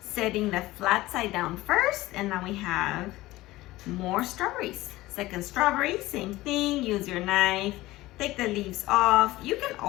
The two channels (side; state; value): right; quieter; 17.9 dB